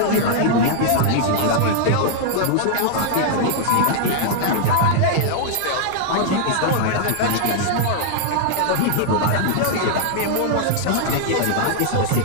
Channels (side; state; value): both; different; correlation -0.01